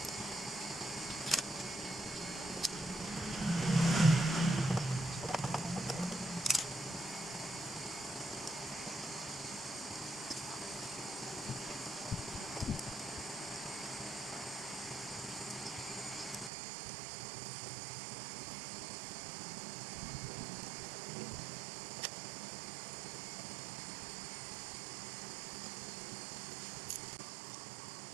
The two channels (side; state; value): left; drops out; at 16.5 s